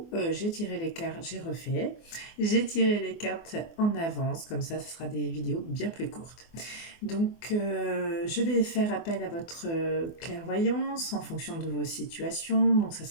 j'ai tiré les cartes, j'ai refait. J'ai tiré les cartes en avance, comme ça ce sera des vidéos bien plus courtes. Donc je vais faire appel à votre clairvoyance en fonction de vos situations. Donc ça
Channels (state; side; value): late; right; 24 ms